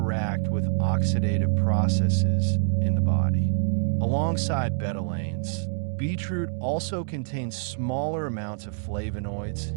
with oxidative processes in the body. Alongside betalains, beetroot also contains smaller amounts of flavonoids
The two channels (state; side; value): silent; left; digital silence